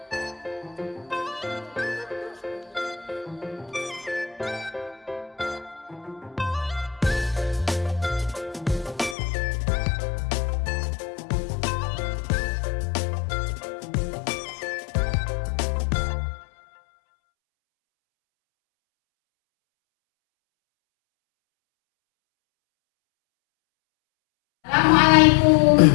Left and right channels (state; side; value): drops out; right; at 9.2 s